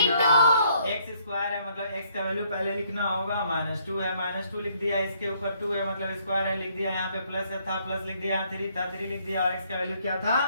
x स्क्वायर है, मतलब x का वैल्यू पहले लिखना होगा, -2 है, -2 लिख दिया, इसके ऊपर 2 है मतलब स्क्वायर है, लिख दिया, यहाँ पे प्लस था, प्लस लिख दिया, 3 था, 3 लिख दिया, और x का वैल्यू क्या था,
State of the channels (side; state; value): both; inverted; correlation -0.68